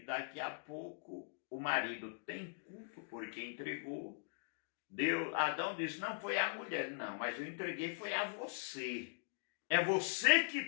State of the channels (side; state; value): right; silent; digital silence